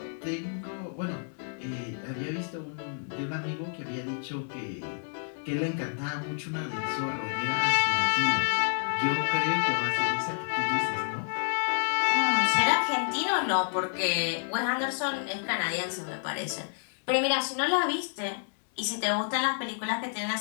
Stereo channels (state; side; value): silent; right; 58 dB below the other